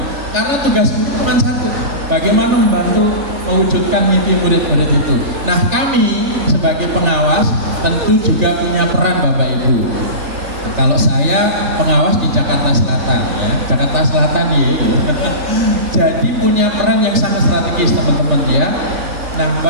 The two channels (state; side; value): late; left; 3.4 ms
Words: Karena tugas guru cuma satu, bagaimana membantu mewujudkan mimpi murid-murid itu. Nah, kami sebagai pengawas tentu juga punya peran Bapak Ibu. Nah, kalau saya pengawas di Jakarta Selatan ya, Jakarta Selatan ya. Jadi punya peran yang sangat strategis teman-teman ya. Nah,